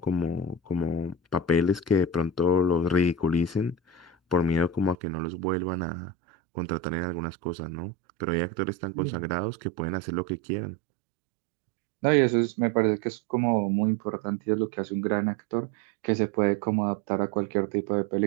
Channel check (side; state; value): left; drops out; at 5.0 s